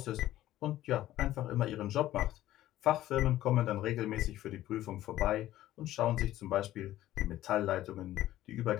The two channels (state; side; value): quieter; right; 14.3 dB